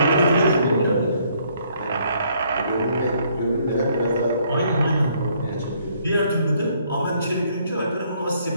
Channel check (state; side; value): inverted; both; correlation -0.67